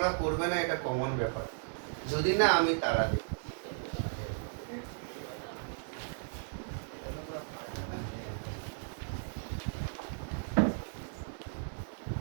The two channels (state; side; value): silent; left; digital silence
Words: করবে না, এটা কমন ব্যাপার। যদি না আমি তারা দিই।